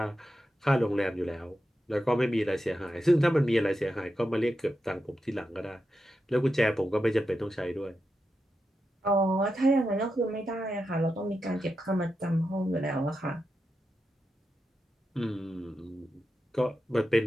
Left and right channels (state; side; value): normal; both; correlation 0.88